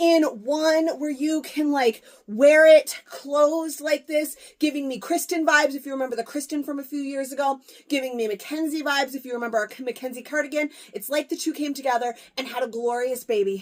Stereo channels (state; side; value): identical; both; correlation 1.00